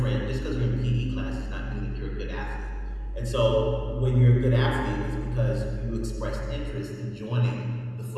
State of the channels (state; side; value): identical; both; correlation 1.00